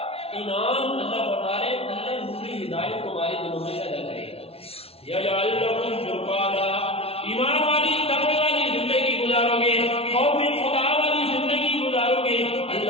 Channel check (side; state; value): right; late; 0.29 ms